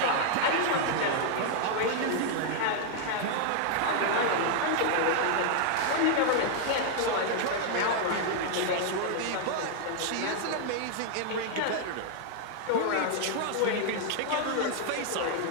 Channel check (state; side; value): different; both; correlation -0.01